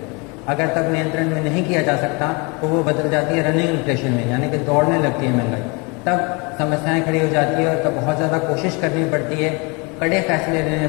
अगर तब नियंत्रण में नहीं किया जा सकता तो वो बदल जाती है रनिंग इन्फ्लेशन में, यानी कि दौड़ने लगती है महंगाई। तब समस्याएं खड़ी हो जाती है और तब बहुत ज़्यादा कोशिश करनी पड़ती है, कड़े फैसले लेने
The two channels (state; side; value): quieter; right; 29.7 dB